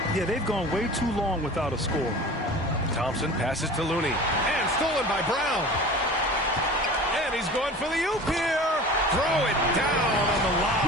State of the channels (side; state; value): both; normal; correlation 0.38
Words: Yeah, they've gone way too long without a score. Thompson passes to Looney. And stolen by Brown. And he's going for the oop here. Throw it down on the